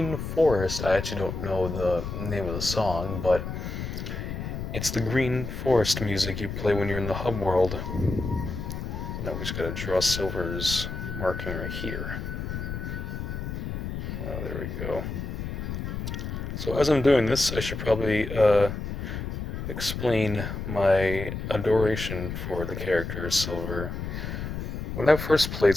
Forest. I actually don't know the name of the song, but it's the Green Forest music you play when you're in the hub world. Now we just gotta draw Silver's marking right here. Oh, there we go. So as I'm doing this, I should probably explain my adoration for the character Silver. When I first played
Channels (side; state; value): left; noise; rumble, 5 dB below the sound